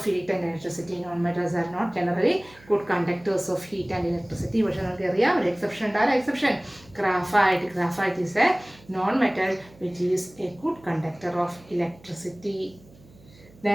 heat and electricity. Non metals are not generally good conductors of heat and electricity. പക്ഷേ നമുക്കറിയാം ഒരു എക്സെപ്ഷൻ ഉണ്ട്. ആ exception graphite. Graphite is a non metal which is a good conductor of electricity.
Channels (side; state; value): right; noise; hum, 25 dB below the sound